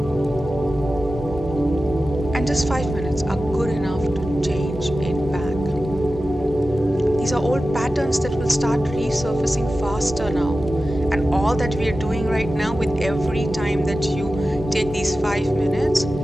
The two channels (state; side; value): normal; both; correlation 0.94